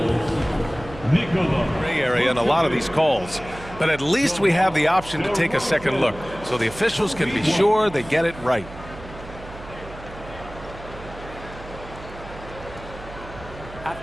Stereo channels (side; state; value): right; noise; hum, 15 dB below the sound